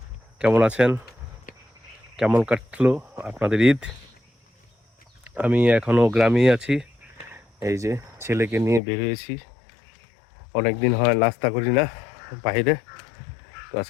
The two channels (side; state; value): right; drops out; at 8.8 s